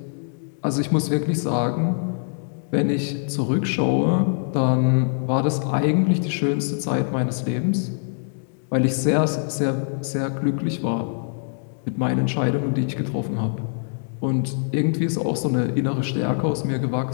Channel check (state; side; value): silent; right; digital silence